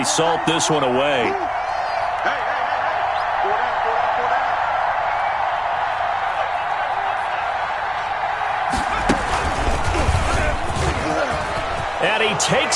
salt this one away. And he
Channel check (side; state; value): both; identical; correlation 1.00